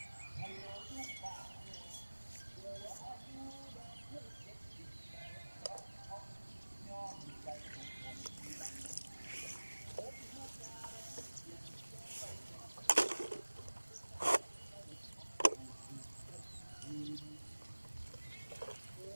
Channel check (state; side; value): inverted; both; correlation -1.00